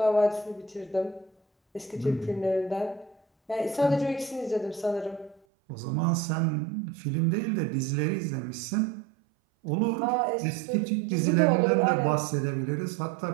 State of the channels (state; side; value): drops out; left; at 5.4 s